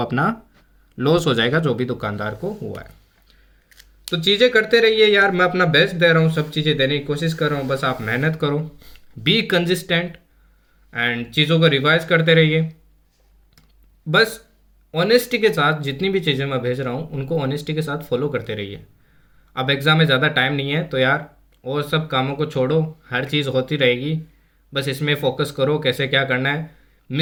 लॉस हो जाएगा जो भी दुकानदार को हुआ है। तो चीज़ें करते रहिए यार, मैं अपना बेस्ट दे रहा हूँ, सब चीज़ें देने की कोशिश कर रहा हूँ, बस आप मेहनत करो, बी कंसिस्टेंट एंड चीज़ों को रिवाइज करते रहिए। बस ऑनेस्टी के साथ जितनी भी चीज़ें मैं भेज रहा हूँ उनको ऑनेस्टी के साथ फॉलो करते रहिए। अब एग्ज़ाम में ज़्यादा टाइम नहीं है तो यार और सब कामों को छोड़ो, हर चीज़ होती रहेगी, बस इसमें फोकस करो कैसे क्या करना है।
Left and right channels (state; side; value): identical; both; correlation 1.00